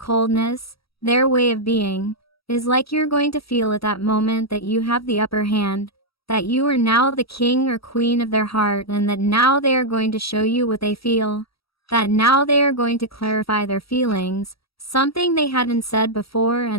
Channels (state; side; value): late; right; 0.76 ms